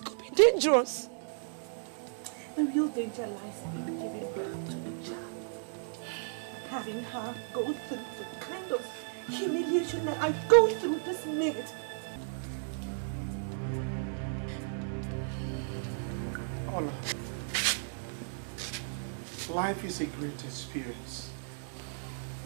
could be dangerous. The real danger lies in giving birth to a child. Having her go through the kind of humiliation that I go through this minute. Ola, life is a great experience.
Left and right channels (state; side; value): silent; left; digital silence